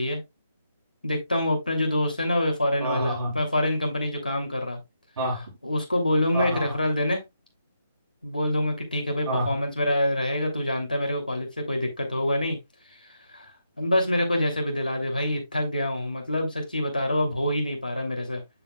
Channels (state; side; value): inverted; both; correlation -0.82